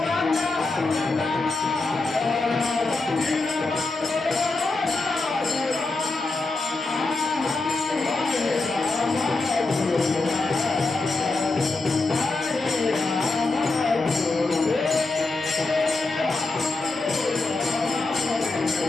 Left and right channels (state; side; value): quieter; right; 3.4 dB